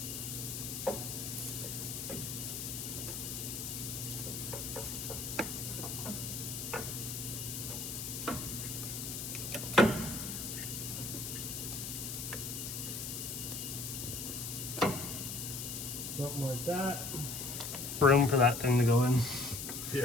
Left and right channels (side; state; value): left; noise; hiss, 5 dB below the sound